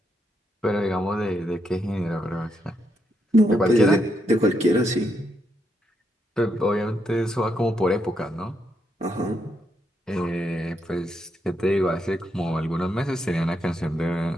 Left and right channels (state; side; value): normal; both; correlation 0.79